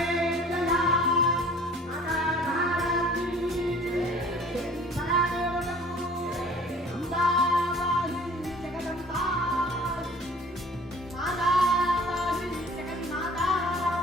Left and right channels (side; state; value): both; normal; correlation 0.50